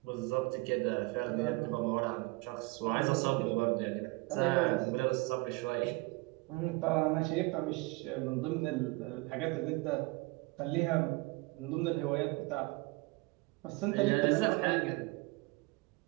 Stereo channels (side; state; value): left; quieter; 24.3 dB